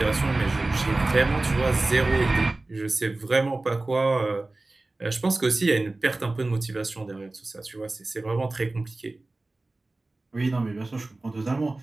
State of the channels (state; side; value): quieter; left; 3.1 dB